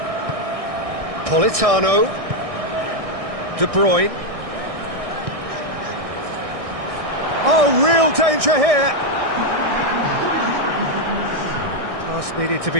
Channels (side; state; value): left; late; 1.6 ms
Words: Politano. De Bruyne. Oh, real danger here. Pass needed to